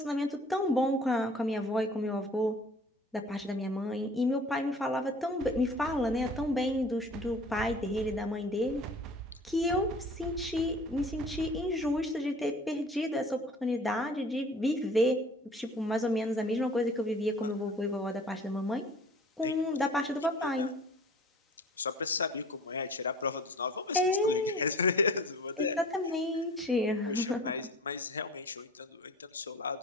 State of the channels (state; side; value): normal; both; correlation 0.48